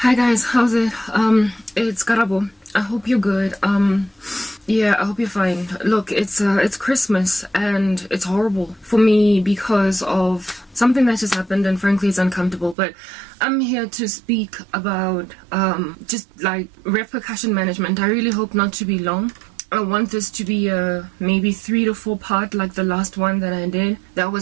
Hi guys, how's it? It's Karabo. I hope you're good. Yeah, I hope you're fine. Look, it's Christmas and it's horrible for me because of something that just happened, and frankly it's uncomfortable, but I'm here to speak about just like repercussion management. I really hope not to be long. I want this to be a maybe 3 to 4 part like the last one that I did. That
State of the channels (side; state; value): left; drops out; at 12.8 s